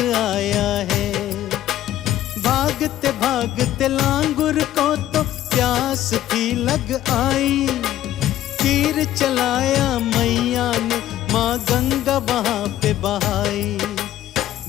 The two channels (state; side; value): quieter; right; 13.1 dB